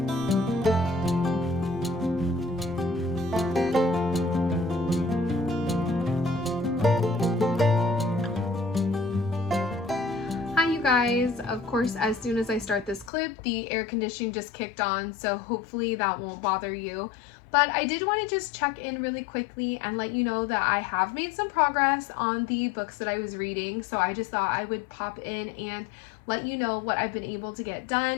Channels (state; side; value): drops out; right; at 13.1 s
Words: guys. Of course, as soon as I start this clip, the air conditioning just kicked on, so hopefully that won't bother you. But I did want to just check in really quickly and let you know that I have made some progress on the books that I was reading, so I just thought I would pop in and let you know what I've been able to get